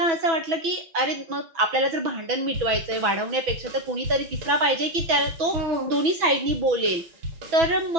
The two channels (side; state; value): left; late; 6.1 ms